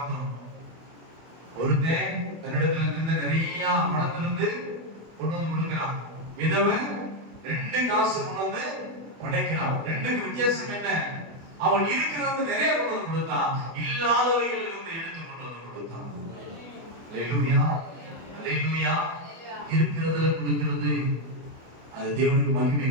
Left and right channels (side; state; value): left; late; 24 ms